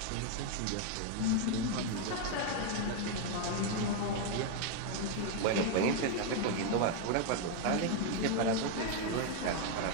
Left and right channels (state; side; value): different; both; correlation 0.01